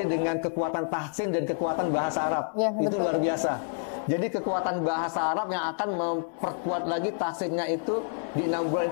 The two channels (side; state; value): right; silent; 59 dB below the other